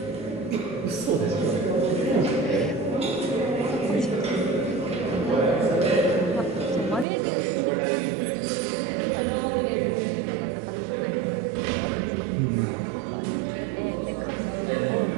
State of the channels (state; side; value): drops out; left; at 7.1 s